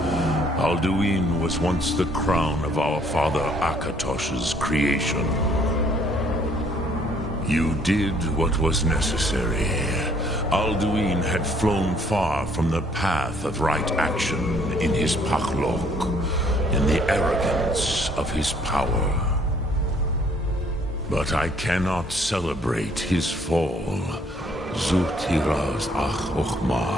Alduin was once the crown of our father Akatosh's creation. You did what was necessary. Alduin had flown far from the path of right action in his Pachlok, in the arrogance of his power. But I cannot celebrate his fall. Zutiraz Ach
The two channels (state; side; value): normal; both; correlation 0.63